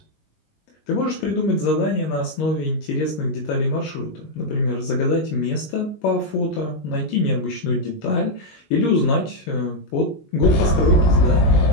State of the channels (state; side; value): late; right; 19 ms